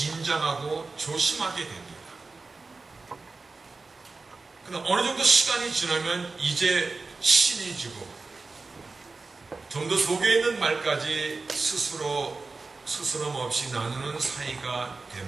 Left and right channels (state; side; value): quieter; left; 3.9 dB